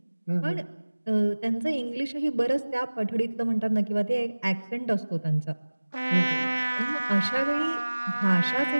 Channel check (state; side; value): inverted; both; correlation -1.00